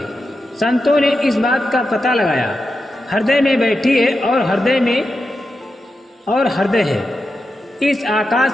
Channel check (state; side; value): normal; both; correlation 0.89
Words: संतों ने इस बात का पता लगाया। हृदय में बैठी है और हृदय है। इस आकाश